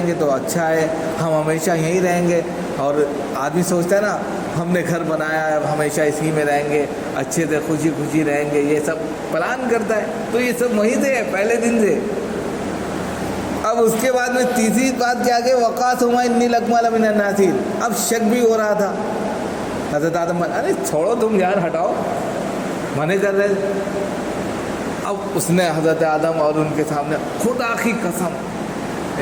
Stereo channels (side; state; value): left; noise; hum, 28 dB below the sound